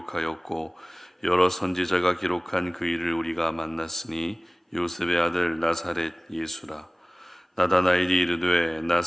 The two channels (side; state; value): both; normal; correlation 0.98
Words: 여러 선지자가 기록한 그 일을 우리가 만났으니 요셉의 아들 나사렛 예수라. 나다나엘이 이르되